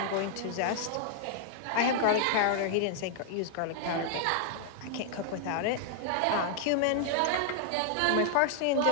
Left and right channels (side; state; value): both; different; correlation -0.01